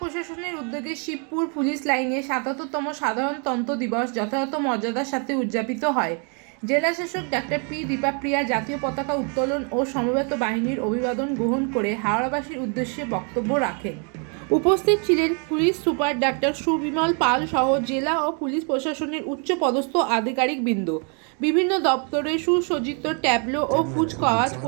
প্রশাসনের উদ্যোগে শিবপুর পুলিশ লাইনে ৭৭তম সাধারণতন্ত্র দিবস যথাযথ মর্যাদার সাথে উদযাপিত হয়। জেলাশাসক ডাক্তার পি দীপাপ্রিয়া জাতীয় পতাকা উত্তোলন ও সমবেত বাহিনীর অভিবাদন গ্রহণ করে হাওড়াবাসীর উদ্দেশ্যে বক্তব্য রাখেন। উপস্থিত ছিলেন পুলিশ সুপার ডাক্তার সুবিমল পাল সহ জেলা ও পুলিশ প্রশাসনের উচ্চপদস্থ আধিকারিকবৃন্দ। বিভিন্ন দপ্তরে সুসজ্জিত ট্যাবলো ও কুচকাওয়াজ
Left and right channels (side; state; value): left; quieter; 38.5 dB